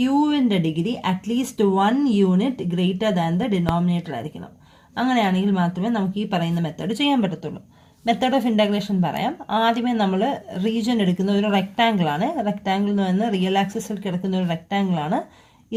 degree at least 1 unit greater than the denominator ആയിരിക്കണം. അങ്ങനെയാണെങ്കിൽ മാത്രമേ നമുക്ക് ഈ പറയുന്ന മെത്തേഡ് ചെയ്യാൻ പറ്റത്തുള്ളൂ. മെത്തേഡ് ഓഫ് ഇൻ്റഗ്രേഷൻ പറയാം. ആദ്യമേ നമ്മൾ റീജിയൻ എടുക്കുന്ന ഒരു റെക്റ്റാങ്കിൾ ആണ്. റെക്റ്റാങ്കിൾ എന്ന് പറയുന്നത് റിയൽ ആക്സിസിൽ കിടക്കുന്ന ഒരു റെക്റ്റാങ്കിൾ ആണ്.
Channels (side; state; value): both; identical; correlation 1.00